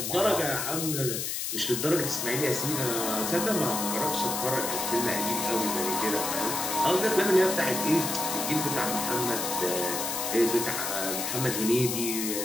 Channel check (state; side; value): noise; left; hiss, 2 dB below the sound